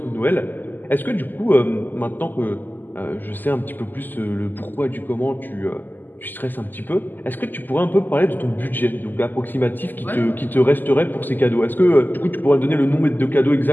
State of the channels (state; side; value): late; right; 0.088 ms